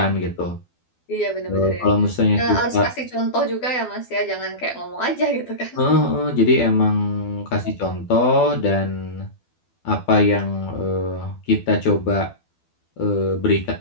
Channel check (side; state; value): right; late; 12 ms